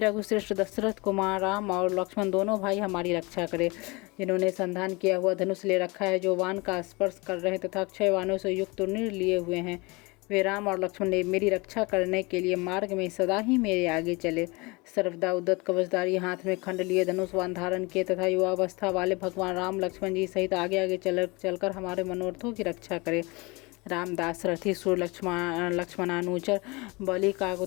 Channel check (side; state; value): right; quieter; 26.0 dB